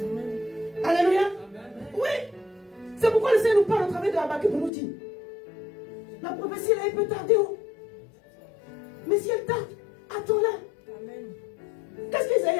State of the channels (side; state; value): right; drops out; at 4.7 s